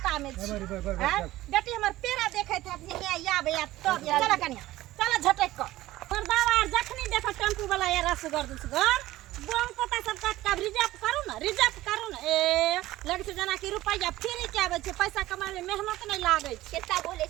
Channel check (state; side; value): quieter; left; 16.4 dB